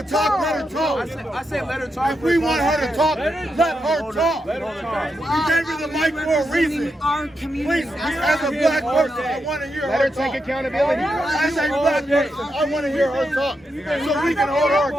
to talk, let her talk. I said let her talk. If we want her to talk, let her talk. We gave her the mic for a reason. Our community. Please, as a black person, I want to hear her talk. Take accountability. As a black person, I want to hear her talk so we can hold her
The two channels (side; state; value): both; normal; correlation 0.85